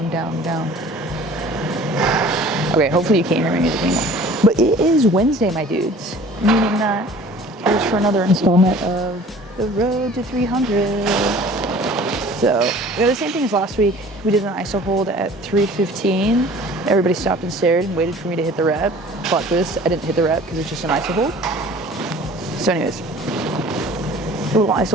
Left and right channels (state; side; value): normal; both; correlation 0.47